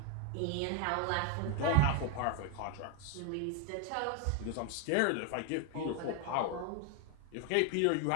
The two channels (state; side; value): different; both; correlation 0.01